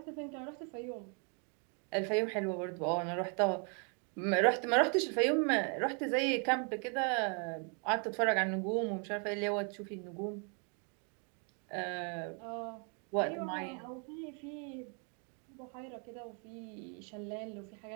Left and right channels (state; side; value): quieter; left; 38.7 dB